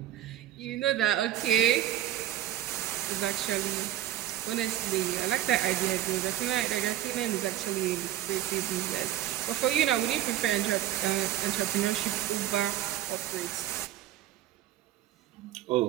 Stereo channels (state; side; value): quieter; left; 13.0 dB